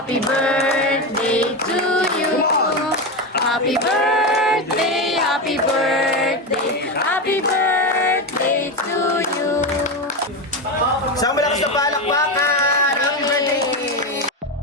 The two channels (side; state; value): both; normal; correlation 0.15